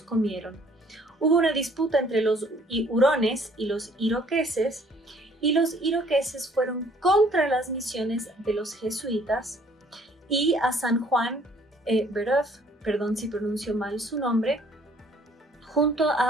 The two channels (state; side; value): normal; both; correlation 0.59